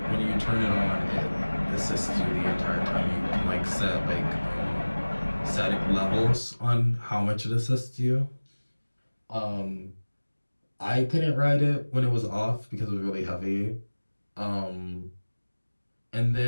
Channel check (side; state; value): both; inverted; correlation -1.00